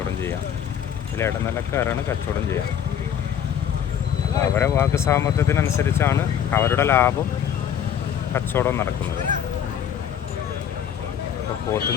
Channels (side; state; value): right; quieter; 9.0 dB